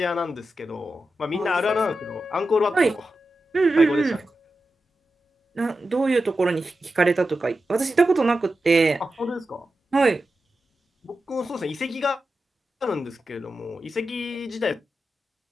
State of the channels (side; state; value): both; normal; correlation 0.91